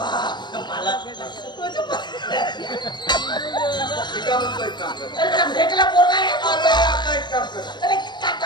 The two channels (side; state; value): right; late; 0.22 ms